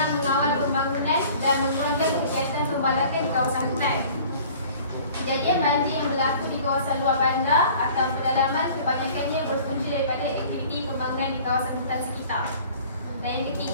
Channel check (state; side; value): inverted; both; correlation -0.48